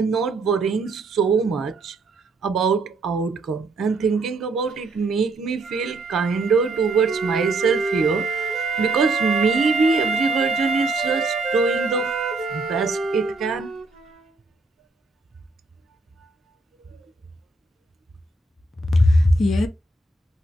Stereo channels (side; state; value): left; quieter; 3.2 dB